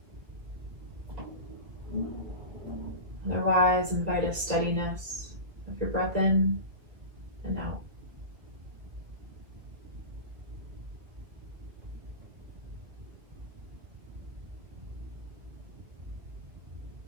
Otherwise, invite a steadiness of your breath in and out.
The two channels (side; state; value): left; late; 1.9 ms